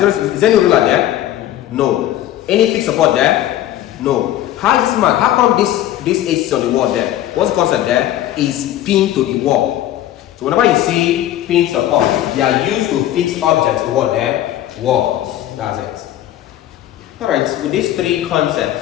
there any ruler there? No. Any fixed support there? No. How is this man? How come this AC is on the wall there? What's the concept there? Is pinned to the wall. So whenever you see pin support, they are used to fix objects to what there? Walls. That's it. Alright, with these three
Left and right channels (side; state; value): right; quieter; 13.0 dB